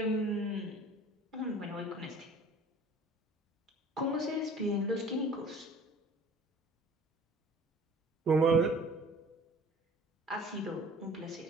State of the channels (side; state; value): both; normal; correlation 0.48